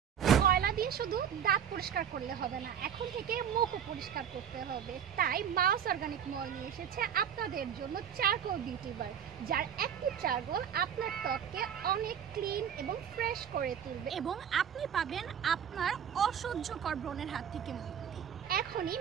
কয়লা দিয়ে শুধু দাঁত পরিষ্কার করলে হবে না, এখন থেকে মুখও পরিষ্কার করতে হবে। তাই মাউস অর্গানিক মল নিয়ে এসেছে আপনাদের জন্য চারকোল বিউটি বার, যার অ্যাক্টিভ চারকোল আপনার ত্বককে অনেক ক্লিন এবং ফ্রেশ করে তুলবে এবং আপনি পাবেন আপনার অসহ্যকর ব্রণের হাত থেকে মুক্তি। এখনই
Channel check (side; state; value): left; quieter; 8.5 dB